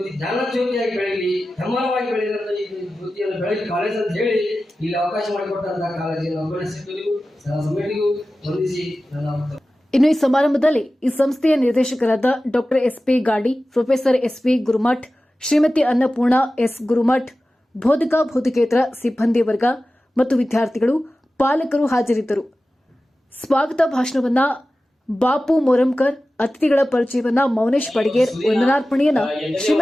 ಜ್ಞಾನ ಜ್ಯೋತಿಯಾಗಿ ಬೆಳೀಲಿ, ಹೆಮ್ಮರವಾಗಿ ಬೆಳೆದಂತ ಈ ಜ್ಯೋತಿಯನ್ನು ಬೆಳಗಿ ಕಾಲೇಜ್ ಅಂತ ಹೇಳಿ ಇಲ್ಲಿ ಅವಕಾಶ ಮಾಡಿಕೊಟ್ಟಂತಹ ಕಾಲೇಜಿನ ಅಭ್ಯರ್ಥಿಗಳಿಗೂ ಸಮಿತಿಗೂ ವಂದಿಸಿ ನನ್ನ. ಇನ್ನು ಈ ಸಮಾರಂಭದಲ್ಲಿ ಈ ಸಂಸ್ಥೆಯ ನಿರ್ದೇಶಕರಾದ doctor SP Gadi, professor SP Gurumath, Shrimati Annapurna S Gurumath, ಬೋಧಕೇತರ ಸಿಬ್ಬಂದಿ ವರ್ಗ ಮತ್ತು ವಿದ್ಯಾರ್ಥಿಗಳು, ಪಾಲಕರು ಹಾಜರಿದ್ದರು. ಸ್ವಾಗತ ಭಾಷಣವನ್ನ ಬಾಪು ಮೊರಂಕರ್, ಅತಿಥಿಗಳ ಪರಿಚಯವನ್ನ ಮೌನೇಶ್ ಬಡಿಗೇರ್, ವಂದನಾರ್ಪಣೆಯನ್ನ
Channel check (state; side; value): normal; both; correlation 0.95